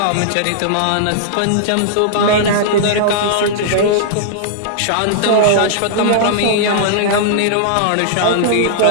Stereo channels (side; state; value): both; different; correlation -0.01